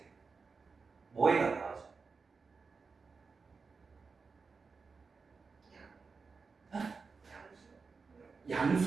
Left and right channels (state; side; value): quieter; left; 4.8 dB